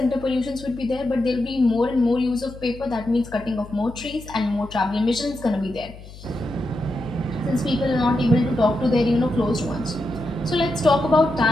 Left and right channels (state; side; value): noise; left; hum, 17 dB below the sound